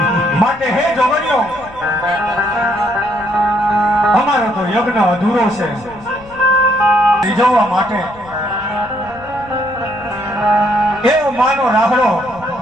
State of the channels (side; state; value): left; noise; rumble, 22 dB below the sound